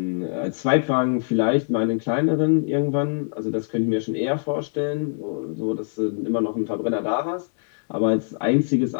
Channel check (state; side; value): silent; right; digital silence